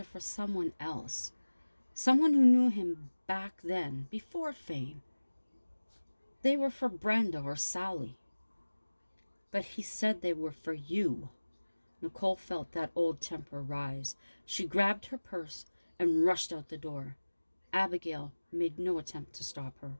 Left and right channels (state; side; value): inverted; both; correlation -1.00